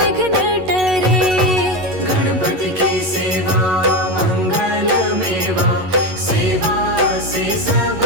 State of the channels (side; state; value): left; late; 11 ms